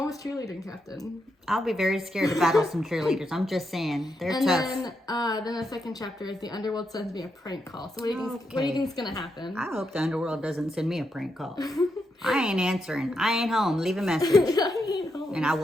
was cheerleading captain. I'll be very scared to battle some cheerleaders. I'm just saying. They're and tough. Then the second chapter is the underworld sends me a prank call. So what do you think is going to happen? I hope the underworld doesn't send me a prank call. I ain't answering. I ain't home. Leave a message. I ain't home. And I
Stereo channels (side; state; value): both; normal; correlation 0.83